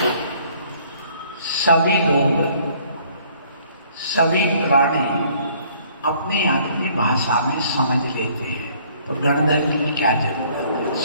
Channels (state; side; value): inverted; both; correlation -0.59